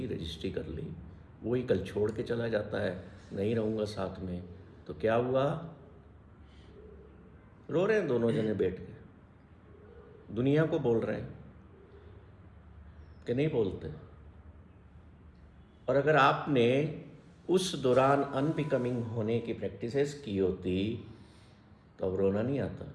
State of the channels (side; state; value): both; identical; correlation 1.00